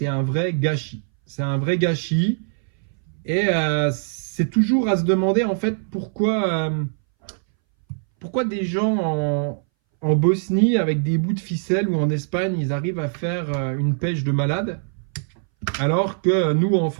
un vrai gâchis. C'est un vrai gâchis. Et c'est toujours à se demander, en fait, pourquoi des gens en Bosnie, avec des bouts de ficelle, ou en Espagne, ils arrivent à faire une pêche de malade, alors que nous, en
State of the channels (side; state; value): left; silent; 62 dB below the other